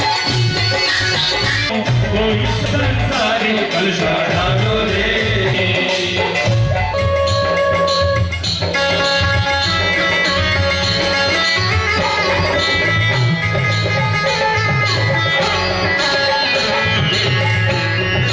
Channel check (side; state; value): both; identical; correlation 1.00